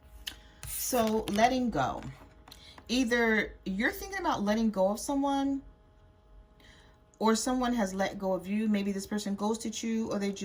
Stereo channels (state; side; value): identical; both; correlation 1.00